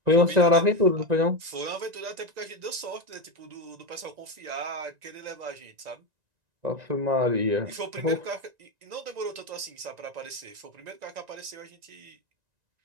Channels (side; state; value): left; late; 1.9 ms